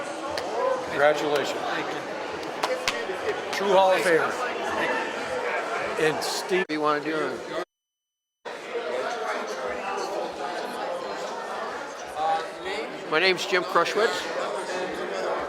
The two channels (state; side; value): identical; both; correlation 1.00